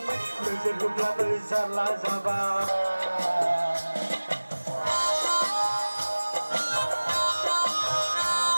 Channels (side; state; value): both; inverted; correlation -1.00